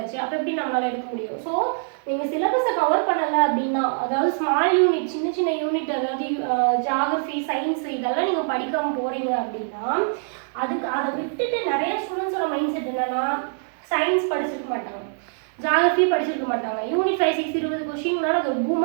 அப்போ எப்படி நம்மளால் எடுக்க முடியும்? ஸோ நீங்கள் சிலபஸை கவர் பண்ணலை அப்படின்னா, அதாவது ஸ்மால் யூனிட், சின்ன சின்ன யூனிட், அதாவது ஜாகிரஃபி சயின்ஸ் இதெல்லாம் நீங்கள் படிக்காமல் போகிறீங்க அப்படின்னா, அதை விட்டுட்டு நிறைய ஸ்டூடெண்ட்ஸோட மைண்ட் செட் என்னன்னா, சயின்ஸ் படிச்சிருக்க மாட்டாங்க, ஜாகிரஃபி படிச்சிருக்க மாட்டாங்க, யூனிட் 5, 6 20 கொஸ்டின்னால அது 2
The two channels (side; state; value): left; silent; digital silence